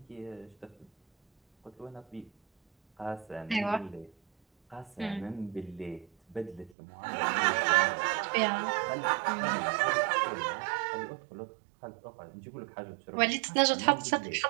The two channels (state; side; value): drops out; left; at 6.7 s